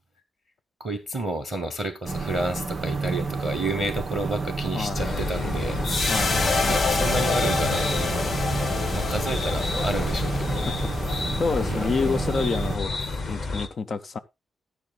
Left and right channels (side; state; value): both; normal; correlation 0.81